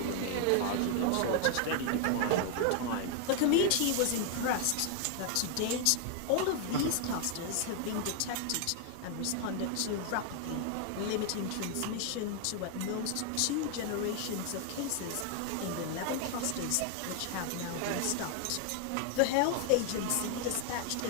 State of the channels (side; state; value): both; different; correlation 0.00